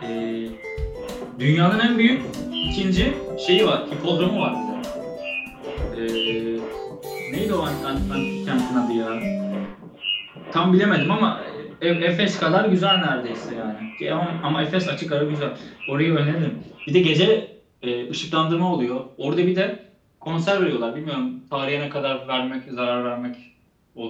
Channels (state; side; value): identical; both; correlation 1.00